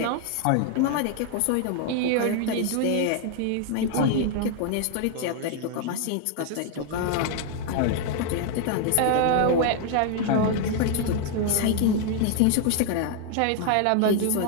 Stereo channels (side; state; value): both; different; correlation 0.00